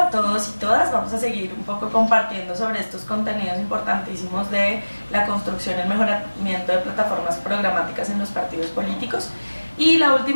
todos y todas. Vamos a seguir un poco compartiendo sobre estos contenidos importantísimos de la construcción y el mejoramiento de plataformas programáticas en los partidos políticos. Y la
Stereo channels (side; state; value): both; inverted; correlation -1.00